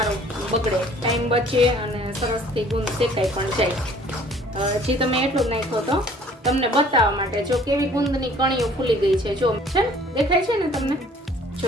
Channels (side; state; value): both; normal; correlation 0.54